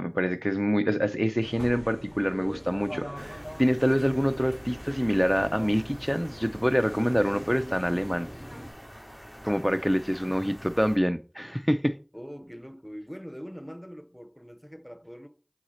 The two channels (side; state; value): both; identical; correlation 1.00